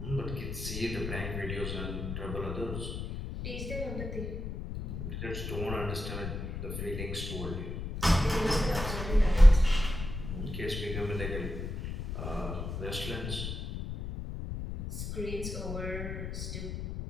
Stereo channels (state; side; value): noise; left; rumble, 6 dB below the sound